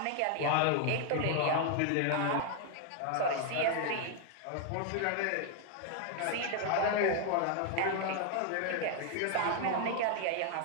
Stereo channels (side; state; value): both; different; correlation 0.01